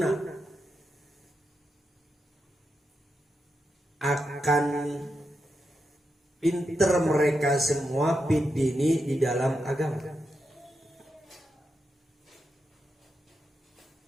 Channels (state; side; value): normal; both; correlation 0.86